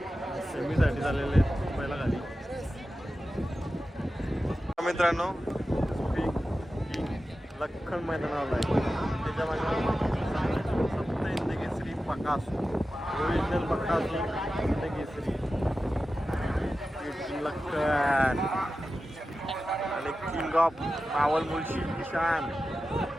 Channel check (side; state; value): both; normal; correlation 0.93